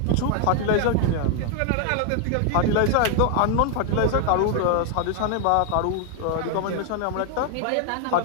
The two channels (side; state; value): both; different; correlation 0.00